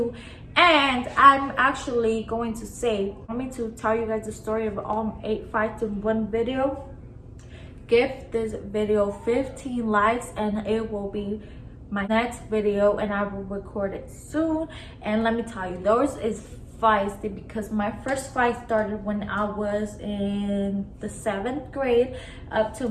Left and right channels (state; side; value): identical; both; correlation 1.00